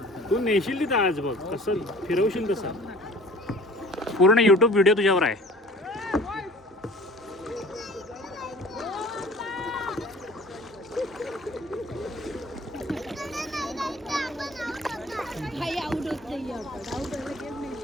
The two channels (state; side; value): normal; both; correlation 0.47